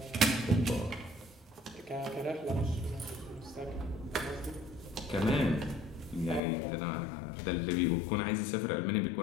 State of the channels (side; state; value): right; drops out; at 6.4 s